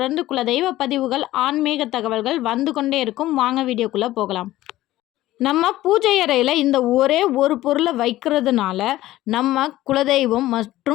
குலதெய்வ பதிவுகள், ஆன்மீக தகவல்கள் வந்து கொண்டே இருக்கும். வாங்க வீடியோக்குள்ளே போகலாம். நம்ம பூஜை அறையில் இந்த ஒரே ஒரு பொருளை வைக்கிறதுனால நம்ம குலதெய்வம்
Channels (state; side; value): quieter; right; 15.6 dB